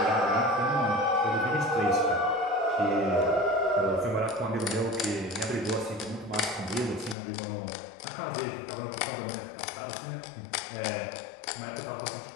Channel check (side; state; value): right; drops out; at 7.2 s